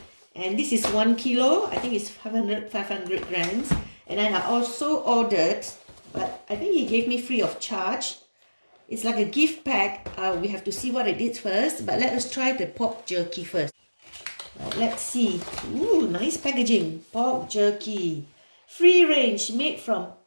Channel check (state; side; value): inverted; both; correlation -1.00